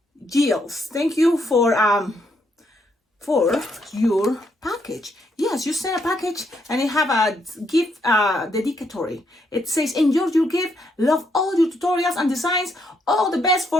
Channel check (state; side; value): normal; both; correlation 0.75